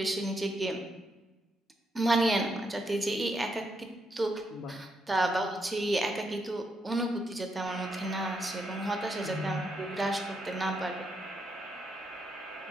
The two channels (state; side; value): normal; both; correlation 0.79